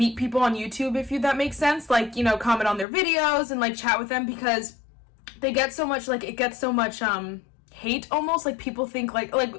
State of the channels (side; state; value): right; drops out; at 2.9 s